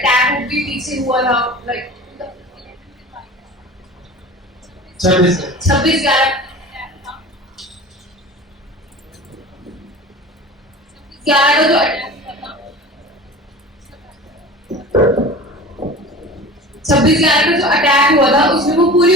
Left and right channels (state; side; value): normal; both; correlation 0.37